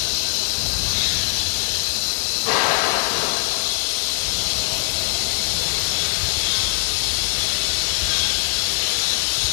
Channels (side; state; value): right; silent; 65 dB below the other